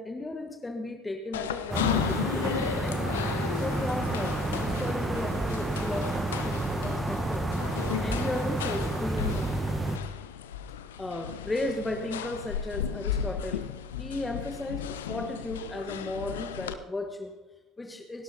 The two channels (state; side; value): normal; both; correlation 0.56